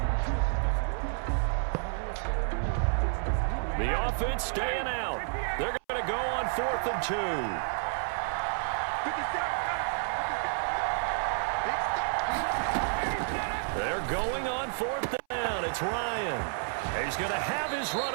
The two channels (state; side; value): silent; left; 58 dB below the other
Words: The offense staying out. They're going to go on 4th and 2. They're going on 4th down. It's Ryan. He's going to have his